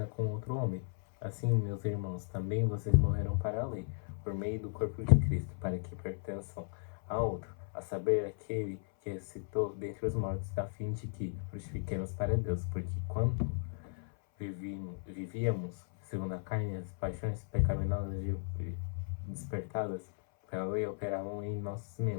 com outro homem. Assim, meus irmãos, também vocês morreram para a lei, por meio do corpo de Cristo, para que pertençam a outro, a saber, aquele que ressuscitou dentre os mortos, a fim de que frutifiquemos para Deus, porque quando vivíamos segundo a carne, as paixões pecaminosas despertadas pela lei operavam em nossos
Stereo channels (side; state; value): right; silent; 54 dB below the other